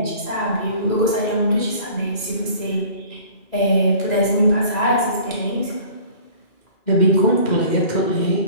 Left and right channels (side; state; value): right; late; 2.4 ms